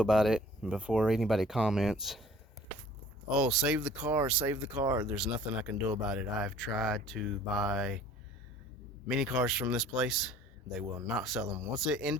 about it. And before anybody comments, oh, save the car, save the car, there's nothing I can do about it. I've tried to buy many cars from this place. They will not sell them. Once it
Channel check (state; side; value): normal; both; correlation 0.50